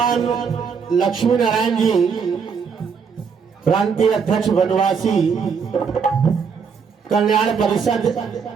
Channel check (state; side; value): quieter; left; 6.1 dB